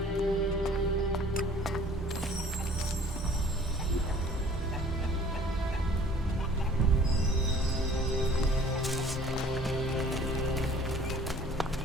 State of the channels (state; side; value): normal; both; correlation 0.52